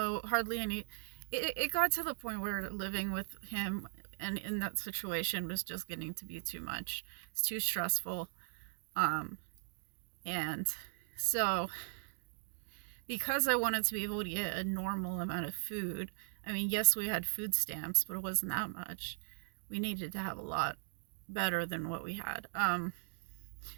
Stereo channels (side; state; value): left; silent; digital silence